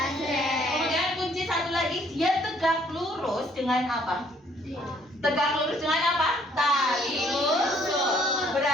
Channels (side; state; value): both; normal; correlation 0.64